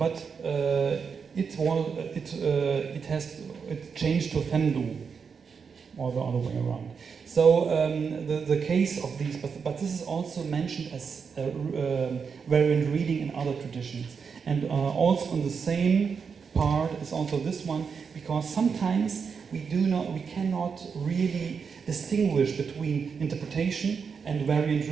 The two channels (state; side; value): quieter; left; 6.0 dB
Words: it changed to Fendu, or the other way around. So the case of these, but this is also mentioned as variant reading in other traditions, and also on the same part is also this one, because sometimes we cannot really distinguish between interpretation and variant